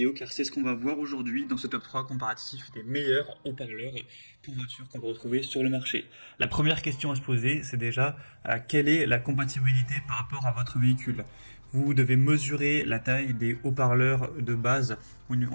car c'est ce qu'on va voir aujourd'hui dans ce top 3 comparatif des meilleurs haut-parleurs pour voiture qu'on peut retrouver sur le marché. La première question à se poser, c'est déjà quelle est la compatibilité par rapport à votre véhicule. Vous devez mesurer la taille des haut-parleurs de base, ou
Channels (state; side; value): inverted; both; correlation -1.00